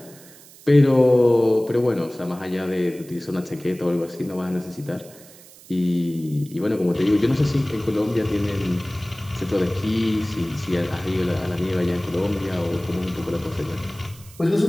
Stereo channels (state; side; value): noise; right; hiss, 22 dB below the sound